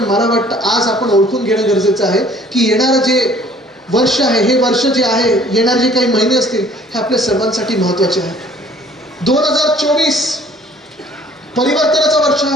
मला वाटतं आज आपण ओळखून घेणं गरजेचं आहे की येणारं जे वर्ष आहे, हे वर्ष जे आहे, येणारे जे काही महिने असतील हे आपल्या सर्वांसाठी महत्वाचे आहे. 2024 परिवर्तनाचं वर्ष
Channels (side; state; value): both; normal; correlation 0.55